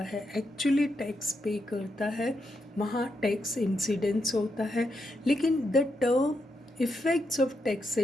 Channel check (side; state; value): both; normal; correlation 0.82